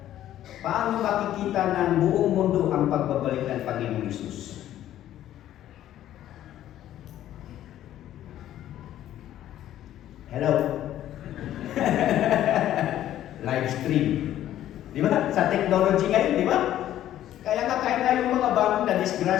Paano makikita ng buong mundo ang pagbabalik ng Panginoong Hesus? Hello? Live stream. Di ba? Sa technology ngayon, di ba? Kaya nga kahit na yung mga bagong na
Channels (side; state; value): right; quieter; 12.4 dB